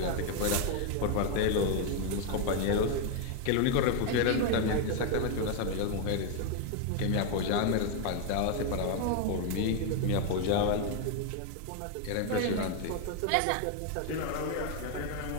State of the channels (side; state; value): both; different; correlation 0.01